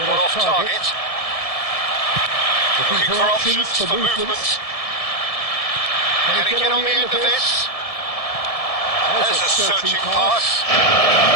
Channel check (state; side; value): late; right; 1.7 ms